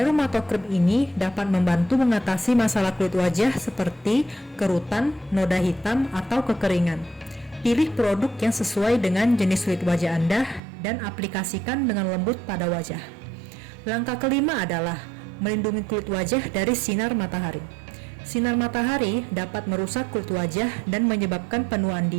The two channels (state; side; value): drops out; left; at 10.6 s